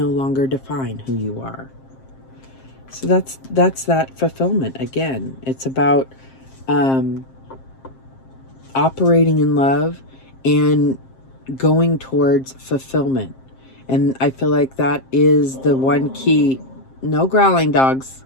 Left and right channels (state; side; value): late; right; 7.5 ms